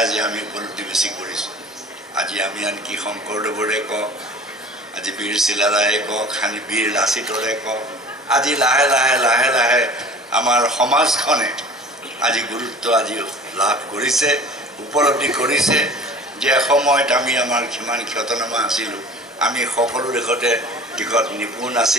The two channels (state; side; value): normal; both; correlation 0.43